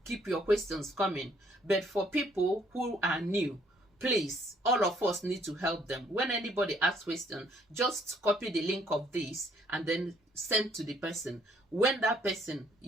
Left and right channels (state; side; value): normal; both; correlation 0.65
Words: keep your questions coming. But for people who are new, please, all of us need to help them. When anybody asks questions, just copy the link of this and then send to the person. When that person,